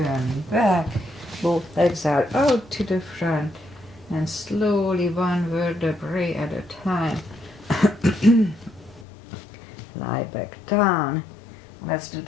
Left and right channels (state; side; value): drops out; right; at 9.1 s